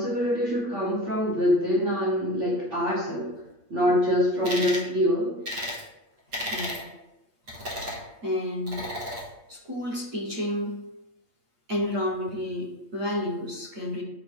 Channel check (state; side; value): late; left; 8.6 ms